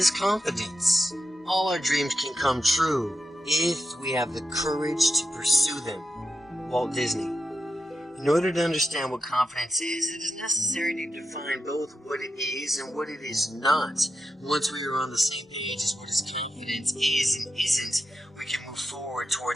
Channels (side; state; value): both; normal; correlation 0.86